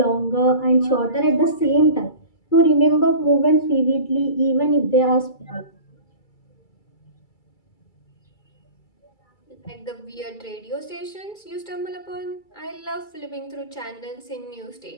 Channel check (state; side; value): late; right; 2.3 ms